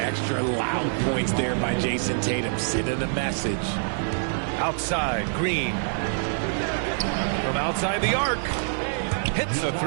loud points there by Jason Tatum, sending a message. Outside, Green. From outside the arc. Hits a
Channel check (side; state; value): left; silent; digital silence